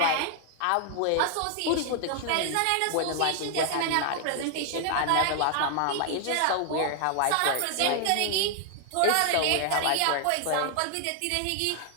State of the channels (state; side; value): different; both; correlation 0.00